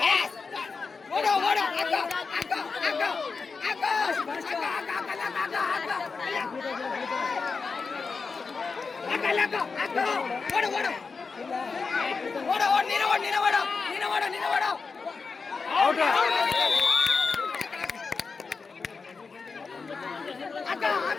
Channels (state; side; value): quieter; right; 4.7 dB